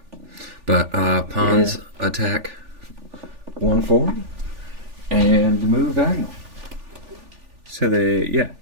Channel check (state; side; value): late; left; 3.4 ms